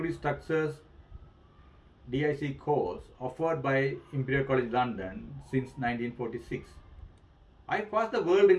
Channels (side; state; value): both; identical; correlation 1.00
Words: structures DIC course offered by Imperial College London since 1946. I passed the world